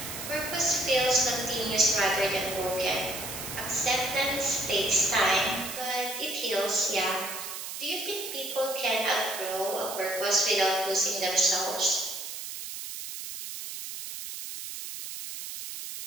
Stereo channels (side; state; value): right; noise; hiss, 8 dB below the sound